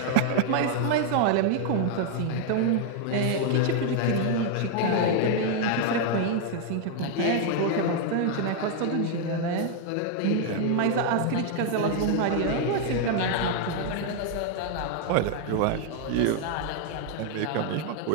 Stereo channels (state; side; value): different; both; correlation 0.00